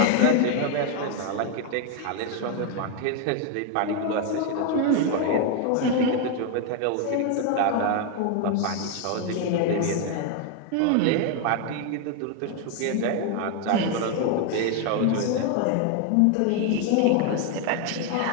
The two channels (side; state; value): both; different; correlation 0.01